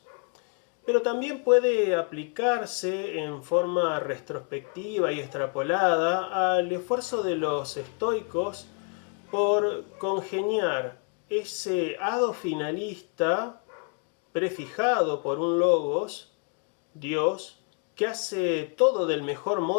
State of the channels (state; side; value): quieter; right; 37.6 dB